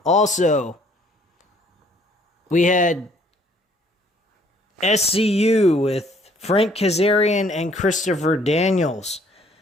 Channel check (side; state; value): both; normal; correlation 0.61